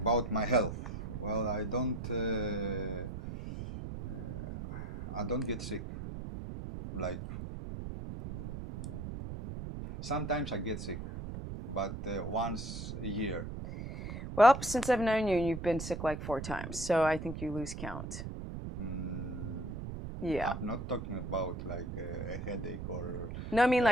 About my health. Well, I don't get sick. Like, sometimes I get sick, but once a year. Well, since I've known you, you've been sick like 4 times, so I think you lose count. Yeah. I'm not talking about like a headache or... No, I mean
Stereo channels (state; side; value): noise; right; rumble, 7 dB below the sound